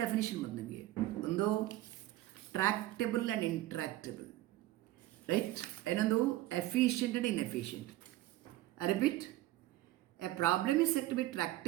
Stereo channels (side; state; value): left; quieter; 15.8 dB